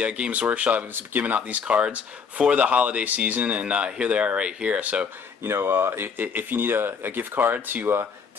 Games Workshop is giving out these cards for the holiday season, and here they are right here. So, you know, if you need a gift card to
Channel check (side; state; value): right; quieter; 6.1 dB